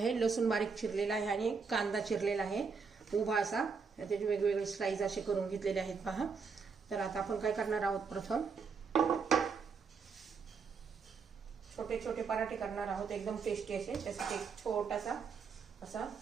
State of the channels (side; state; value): left; quieter; 5.4 dB